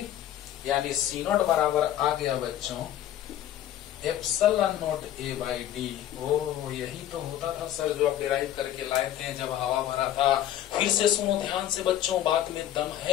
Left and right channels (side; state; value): right; quieter; 12.1 dB